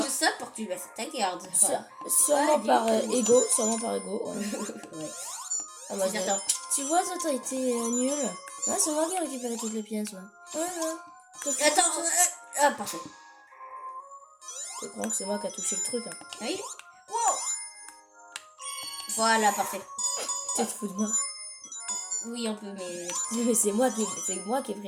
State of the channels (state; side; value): identical; both; correlation 1.00